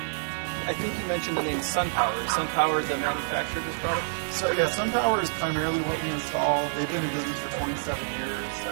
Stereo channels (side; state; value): left; silent; digital silence